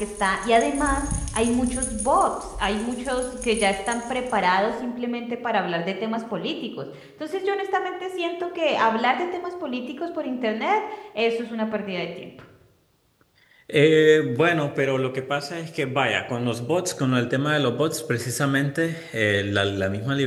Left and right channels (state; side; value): identical; both; correlation 1.00